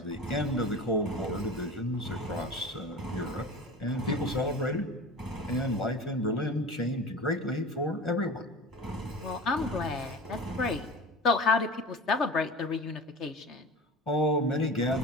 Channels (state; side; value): normal; both; correlation 0.34